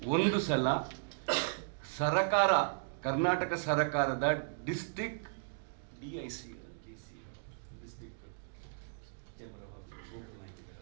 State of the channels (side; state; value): left; silent; digital silence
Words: ಒಂದು ಸಲ ಸರಕಾರ, ಕರ್ನಾಟಕ ಸರ್ಕಾರದ ಡಿಸ್ಟ್ರಿಕ್ಟ್ DIC